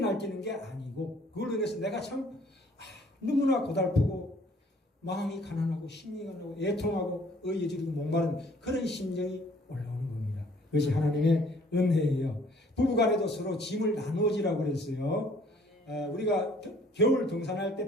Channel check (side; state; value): both; normal; correlation 0.58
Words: 게 아니고 그걸로 인해서 내가 참 너무나 고달프고 마음이 가난하고 심리가 나고 애통하고 의여지르고 목마른 그런 심정이 올라오는 겁니다. 그것이 하나님의 은혜예요. 부부간에도 서로 짐을 나누어지라고 그랬어요. 우리가 겨울 등산할